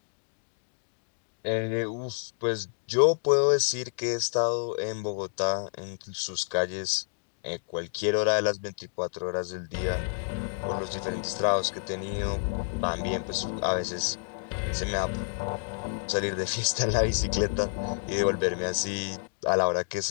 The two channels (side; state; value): right; silent; 58 dB below the other